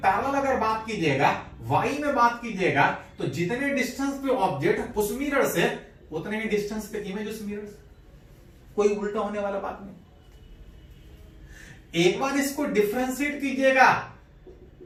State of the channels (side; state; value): both; identical; correlation 1.00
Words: अगर बात कीजिएगा, वाई में बात कीजिएगा, तो जितने डिस्टेंस पे ऑब्जेक्ट उस मिरर से, उतने ही डिस्टेंस पे इमेज उस मिरर से। कोई उल्टा होने वाला बात नहीं। एक बार इसको डिफरेंशिएट कीजिएगा,